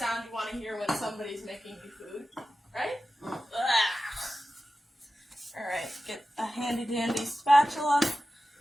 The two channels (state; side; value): normal; both; correlation 0.94